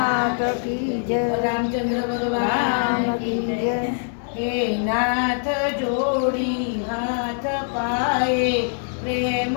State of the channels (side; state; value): right; silent; 63 dB below the other